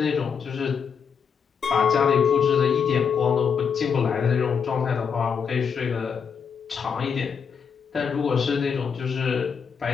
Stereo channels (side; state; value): right; quieter; 6.6 dB